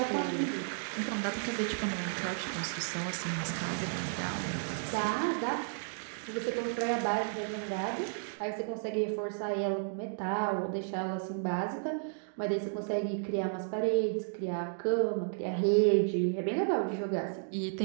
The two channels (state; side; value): silent; left; digital silence